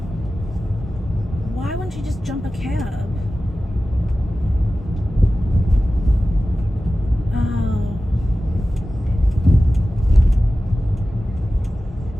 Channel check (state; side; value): normal; both; correlation 0.95